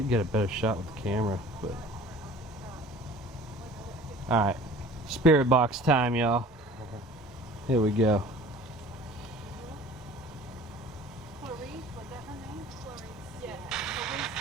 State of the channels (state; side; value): normal; both; correlation 0.46